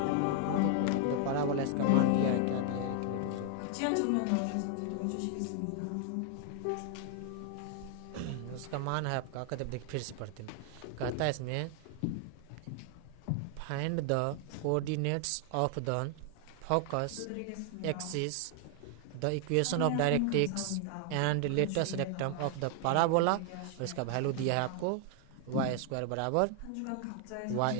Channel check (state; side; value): different; both; correlation 0.00